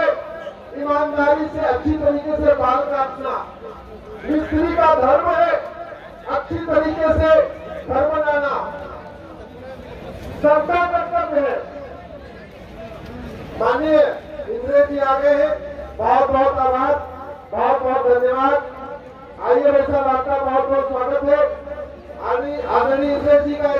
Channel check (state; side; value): identical; both; correlation 1.00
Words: ईमानदारी से अच्छी तरीके से बाल काटना। मिस्त्री का धर्म है अच्छी तरीके से घर बनाना। सबका कर्तव्य है। माननीय इंद्रेश जी आ गए हैं, बहुत बहुत आभार, बहुत बहुत धन्यवाद। आइए भाई साहब, आपका बहुत बहुत स्वागत है। आदरणीय इंद्रेश जी का